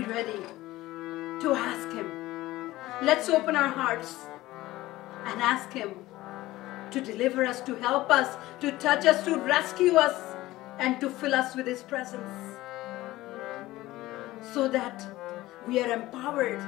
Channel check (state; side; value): quieter; right; 17.3 dB